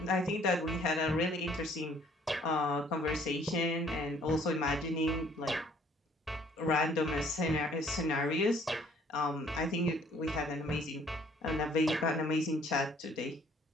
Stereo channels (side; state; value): both; normal; correlation 0.60